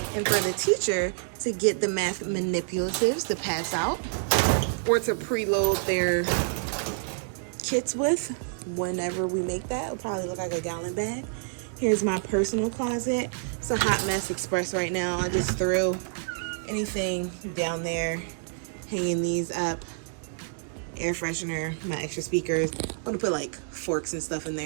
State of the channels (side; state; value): left; silent; digital silence